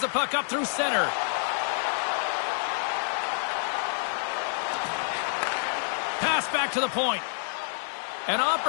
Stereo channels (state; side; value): silent; right; digital silence